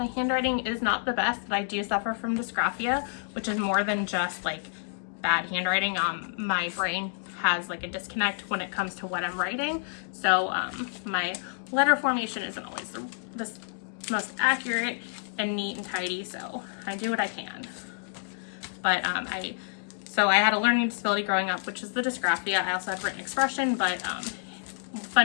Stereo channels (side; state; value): right; silent; digital silence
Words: handwriting is not the best, but I do suffer from dysgraphia, which is more than just like bad handwriting. My brain has like a disconnect when it comes to what I'm writing. So my letter formation isn't always the most accurate and neat and tidy, so I do what I can. But so I had a learning disability growing up, which is the dysgraphia. I also had written expression, but